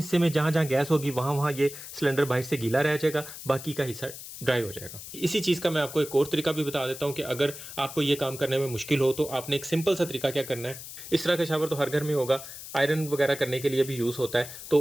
में जहाँ जहाँ गैस होगी वहाँ ये सिलेंडर बाहर से गीला रह जाएगा, बाकी का हिस्सा ड्राई हो जाएगा। इसी चीज़ का मैं आपको एक और तरीका भी बता देता हूँ कि अगर आपको ये काम करने में मुश्किल हो तो आपने एक सिंपल सा तरीका क्या करना है। इस तरह का शावर तो हर घर में होगा, आयरन वगैरह करने के लिए भी यूज़ होता है।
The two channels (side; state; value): left; noise; hiss, 12 dB below the sound